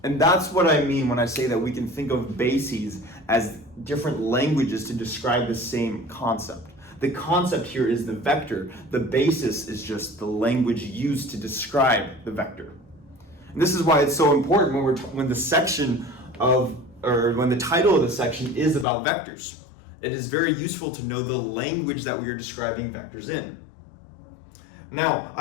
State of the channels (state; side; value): drops out; right; at 18.9 s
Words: And that's what I mean when I say that we can think of bases as different languages to describe the same concept. The concept here is the vector. The basis is just the language used to describe the vector. And this is why it's so important when the title of the section is about vectors. It is very useful to know the language that we are describing vectors in. Now,